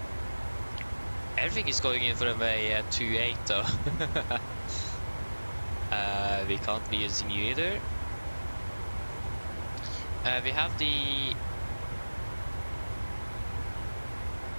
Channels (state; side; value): inverted; both; correlation -1.00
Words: Everything is going in for runway 28 though. We can't be using you either. We have